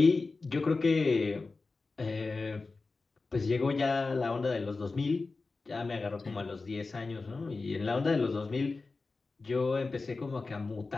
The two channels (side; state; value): right; quieter; 3.9 dB